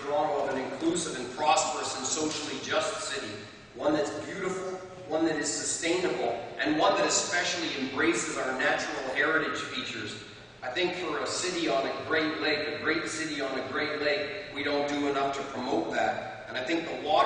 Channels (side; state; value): both; identical; correlation 1.00